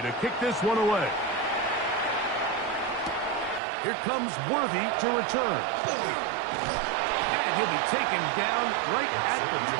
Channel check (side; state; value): left; drops out; at 3.6 s